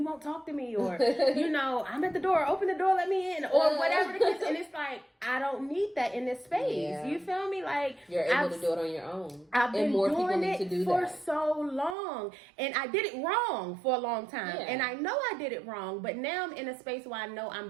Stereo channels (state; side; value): drops out; left; at 12.0 s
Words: won't talk to me, or, I'm at the door, open the door, let me in, or whatever the case. And it's like, like, I don't need that in this space. Yeah. You feel me? Like, you're able to do it on your own. I've been more doing people need it to do for that. so long, and I did it wrong for a long time, Yeah. and I know I did it wrong, but now I'm in a space where I know I'm